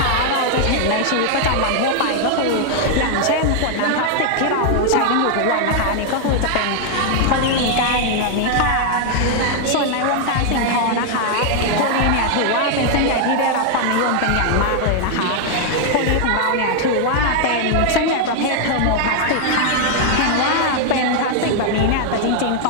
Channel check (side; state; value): both; different; correlation 0.00